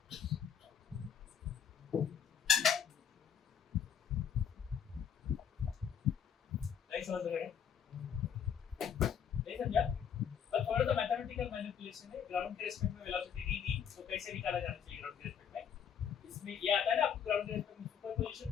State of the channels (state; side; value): quieter; right; 8.0 dB